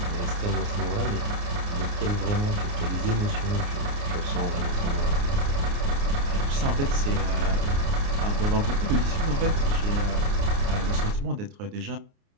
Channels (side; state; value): left; late; 29 ms